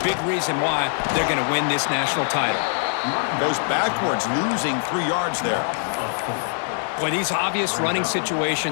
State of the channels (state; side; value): silent; right; 63 dB below the other